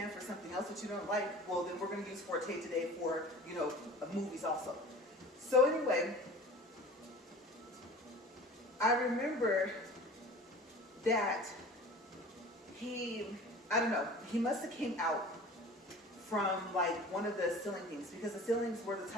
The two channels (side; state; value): both; normal; correlation 0.41